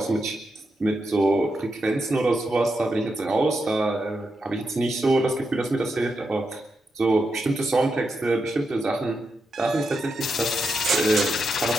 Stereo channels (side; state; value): both; normal; correlation 0.85